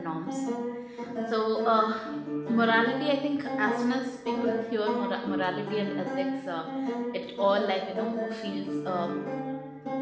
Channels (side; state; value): both; identical; correlation 1.00